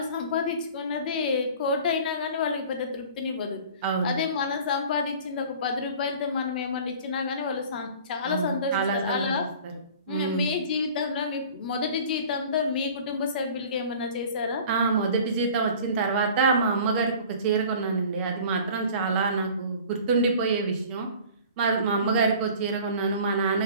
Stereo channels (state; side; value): inverted; both; correlation -0.44